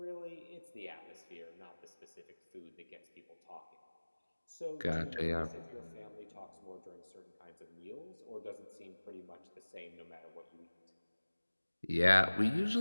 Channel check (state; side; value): inverted; both; correlation -1.00